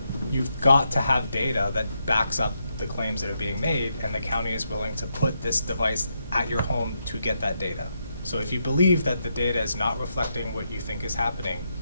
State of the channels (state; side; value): inverted; both; correlation -0.81